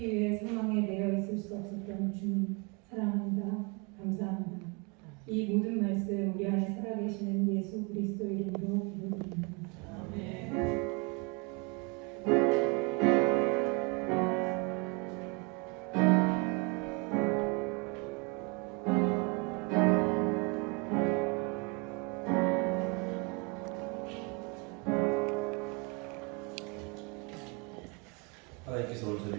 위해 사망에 매여 있을 수 없었던 주님 사랑합니다. 감사합니다. 이 모든 말씀 우리 안에 살아계시는 예수 그리스도 이름으로 기도드립니다. 아멘. 하나님께서 오늘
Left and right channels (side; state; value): left; quieter; 31.5 dB